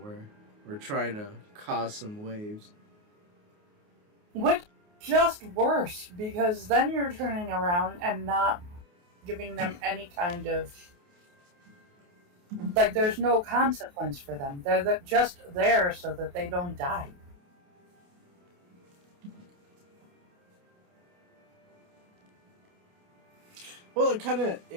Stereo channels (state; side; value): late; left; 28 ms